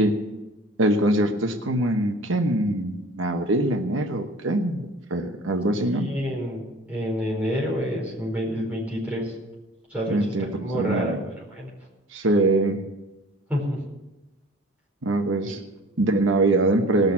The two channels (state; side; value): normal; both; correlation 0.45